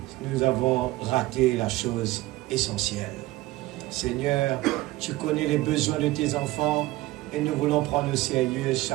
nous avons raté la chose essentielle. Seigneur, tu connais les besoins de tes enfants et nous voulons prendre au sérieux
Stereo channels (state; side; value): quieter; left; 18.4 dB